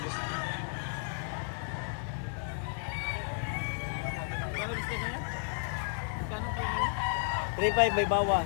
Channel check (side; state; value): right; silent; 56 dB below the other